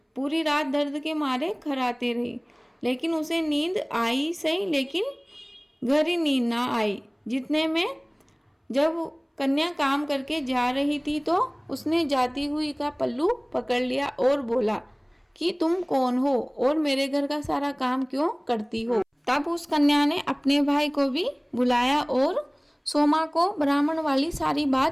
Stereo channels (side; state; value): both; identical; correlation 1.00